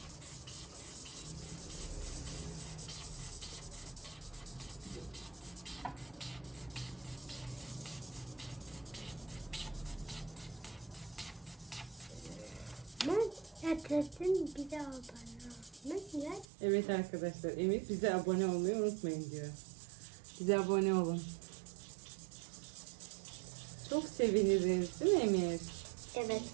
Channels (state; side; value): drops out; left; at 16.4 s